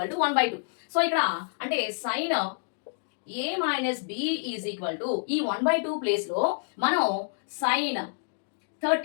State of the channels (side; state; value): right; silent; digital silence